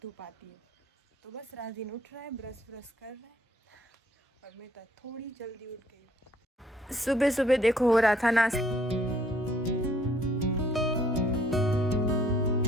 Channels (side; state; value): both; normal; correlation 0.62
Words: धूप आती है। तो बस राजीन उठ रहा है, ब्रश कर रहा है और मैं तो थोड़ी जल्दी उठ गई। सुबह सुबह देखो हो रहा था नाश्ता।